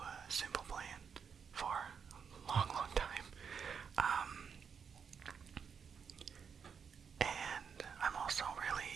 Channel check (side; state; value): left; quieter; 6.6 dB